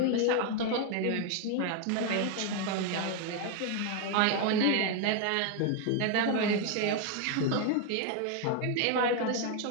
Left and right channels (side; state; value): both; different; correlation 0.01